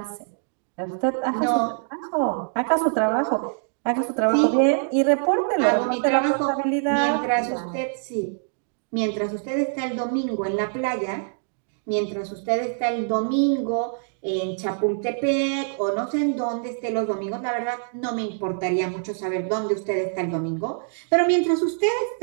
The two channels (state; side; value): silent; left; digital silence